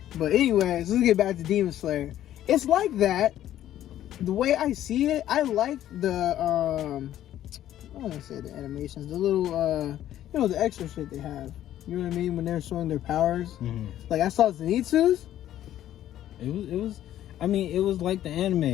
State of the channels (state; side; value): quieter; right; 12.3 dB